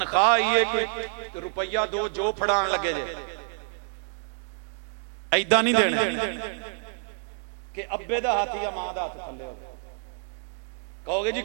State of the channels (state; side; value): silent; left; digital silence